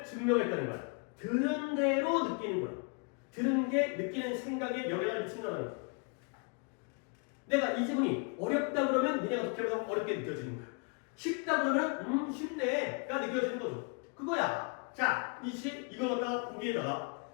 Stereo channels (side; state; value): right; quieter; 36.2 dB